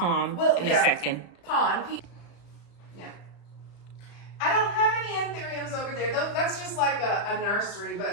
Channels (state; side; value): late; right; 35 ms